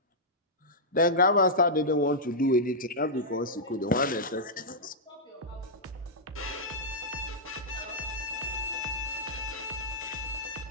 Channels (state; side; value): normal; both; correlation -0.09